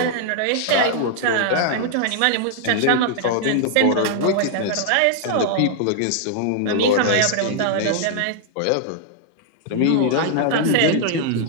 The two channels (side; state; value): both; different; correlation -0.01